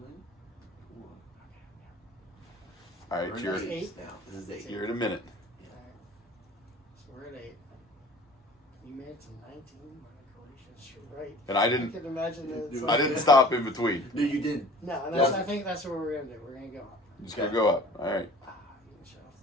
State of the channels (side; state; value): both; normal; correlation 0.46